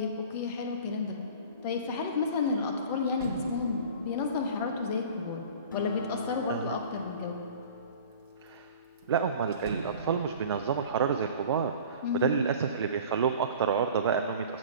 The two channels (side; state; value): both; inverted; correlation -0.41